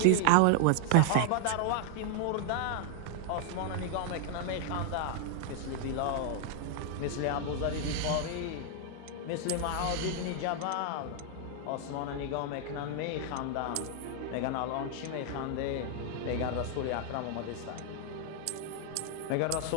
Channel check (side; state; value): both; different; correlation 0.00